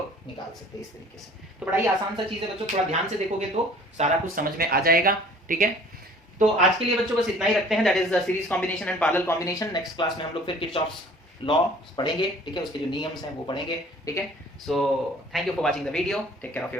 इस तरीके से। तो बड़ा ही आसान सा चीज है बच्चों, थोड़ा ध्यान से देखोगे तो सारा कुछ समझ में आ जाएगा, ठीक है। तो आज के लिए बच्चों बस इतना ही रखते हैं, that is the series combination and parallel combination. Next class में हम लोग फिर किरचॉफ्स लॉ पढ़ेंगे, ठीक है, उसके जो नियम्स हैं वो पढ़ेंगे, ठीक है। So thank you for watching the video, take care of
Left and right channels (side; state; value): both; normal; correlation 0.51